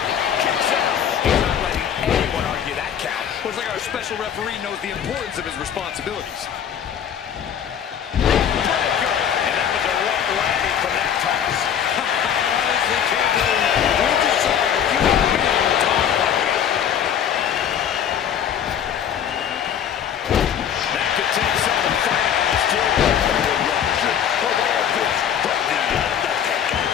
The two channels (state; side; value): quieter; right; 8.9 dB